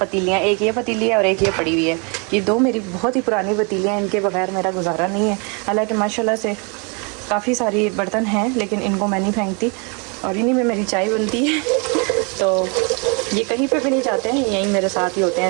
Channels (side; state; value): left; quieter; 33.7 dB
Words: एक ये पतीली है और एक ये पड़ी हुई है। ये 2 मेरी बहुत ही पुरानी पतीलियाँ, इनके बगैर मेरा गुजारा नहीं है। हालांकि माशाल्लाह से काफ़ी सारी बर्तन हैं, लेकिन इनको मैं नहीं फेंकती और इन्हीं में मेरी चाय बनती है। तो ये कहीं पे भी नहीं जाते हैं, यहीं मेरे साथ ही होते